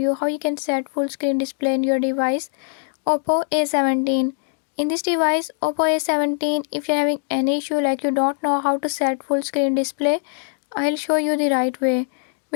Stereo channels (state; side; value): silent; right; 64 dB below the other